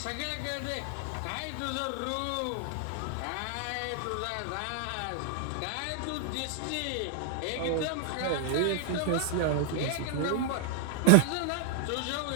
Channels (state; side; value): different; both; correlation 0.00